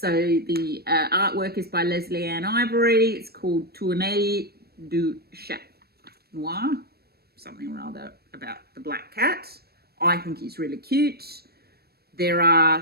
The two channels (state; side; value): late; left; 0.46 ms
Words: the artwork is by Leslie Ann Ivory. It's called Tournée du Chat Noir, something or other about the black cat. I think he's really cute. There